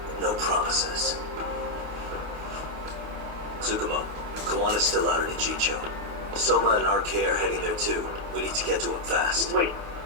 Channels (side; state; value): left; late; 28 ms